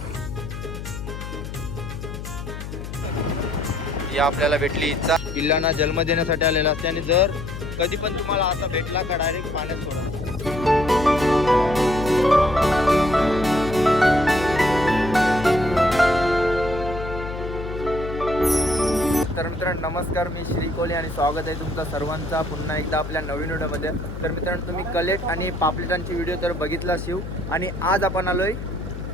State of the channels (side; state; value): left; noise; hum, 8 dB below the sound